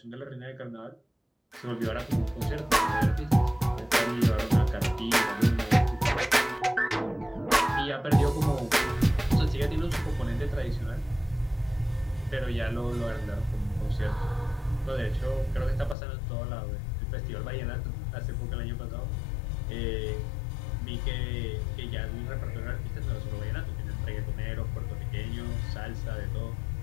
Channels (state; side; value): drops out; right; at 16.0 s